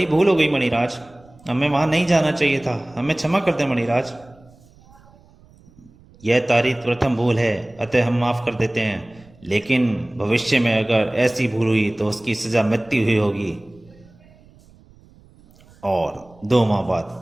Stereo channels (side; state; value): right; noise; rumble, 27 dB below the sound